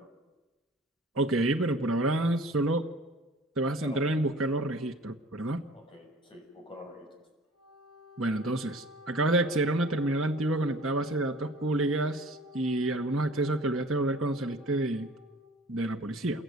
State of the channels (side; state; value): both; normal; correlation 0.47